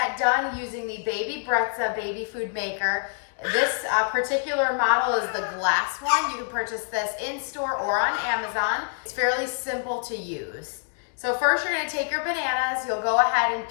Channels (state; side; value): silent; right; digital silence